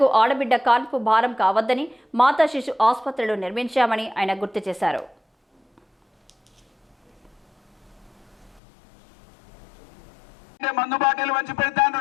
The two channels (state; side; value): drops out; right; at 8.6 s